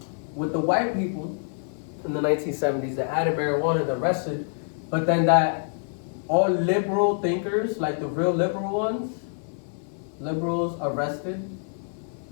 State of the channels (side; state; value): right; silent; 61 dB below the other